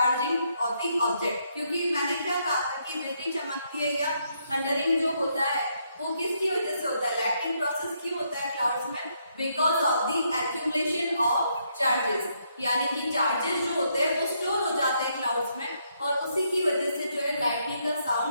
ऑफ द ऑब्जेक्ट. क्योंकि मैंने क्या कहा था कि बिजली चमकती है या थंडरिंग जो होता है वो किसकी वजह से होता है, लाइटनिंग प्रोसेस क्यों होता है क्लाउड्स में, because of the accumulation of charges. यानी कि चार्जेस जो होते हैं वो स्टोर हो जाते हैं क्लाउड्स में, और उसी की वजह से जो है लाइटनिंग का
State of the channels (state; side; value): inverted; both; correlation -0.75